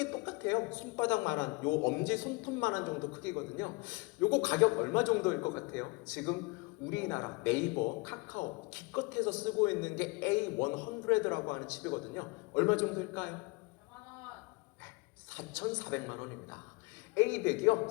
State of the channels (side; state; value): right; quieter; 26.7 dB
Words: 똑같아요. 손바닥만한, 요 엄지 손톱만한 정도 크기거든요. 요거 가격 얼마 정도일 것 같아요? 지금 우리나라 네이버, 카카오 기껏해서 쓰고 있는 게 A100라고 하는 칩이거든요. 얼마 정도일까요? 4,400만 원입니다. A100이요